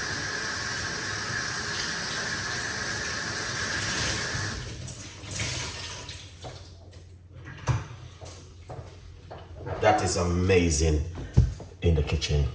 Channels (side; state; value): both; identical; correlation 1.00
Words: That is amazing in the kitchen